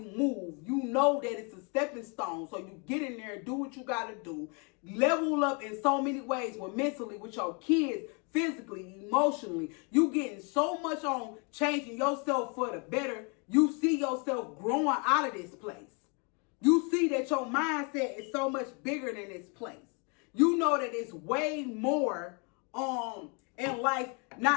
move, you know that it's a stepping stone. So you get in there, do what you got to do, level up in so many ways, with mentally, with your kids, physically, emotionally. You getting so much on changing yourself for the better. You see yourself growing out of this place. You see that your mindset is so much bigger than this place. You know that it's way more in life,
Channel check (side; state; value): right; quieter; 34.3 dB